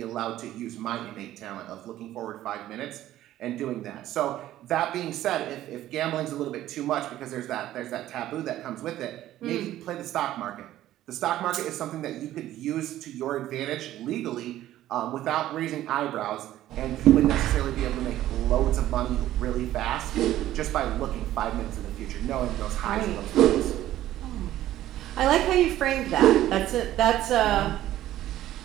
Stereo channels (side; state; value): left; quieter; 13.7 dB